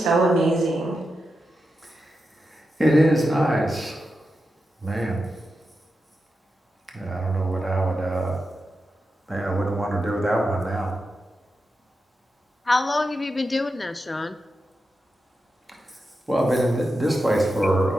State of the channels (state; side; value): normal; both; correlation 0.89